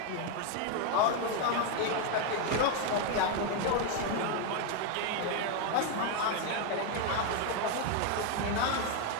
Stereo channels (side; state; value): both; different; correlation 0.01